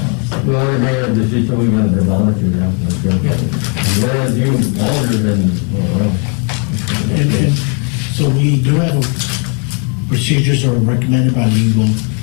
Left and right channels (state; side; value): quieter; right; 38.2 dB